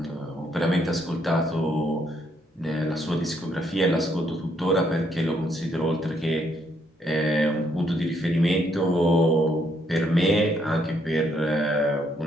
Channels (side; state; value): both; normal; correlation 0.72